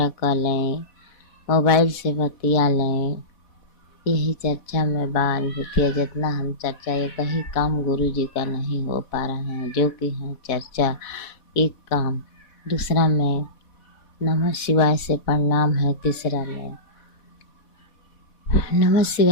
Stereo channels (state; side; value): late; right; 4.1 ms